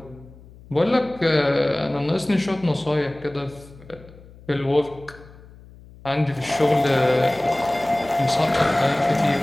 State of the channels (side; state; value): left; noise; hum, 22 dB below the sound